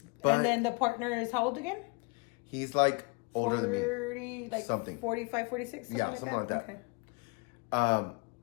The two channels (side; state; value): right; quieter; 31.0 dB